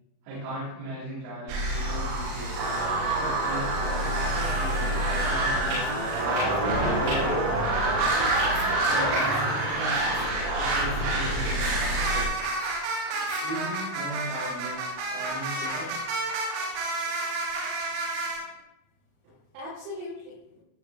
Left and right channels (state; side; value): late; left; 38 ms